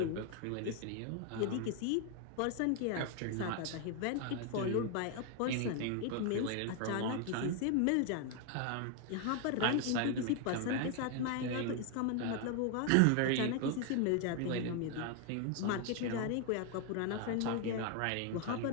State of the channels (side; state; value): both; different; correlation 0.01